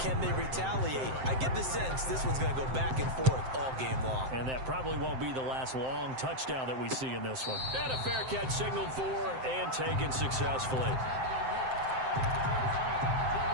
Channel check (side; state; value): left; late; 7.7 ms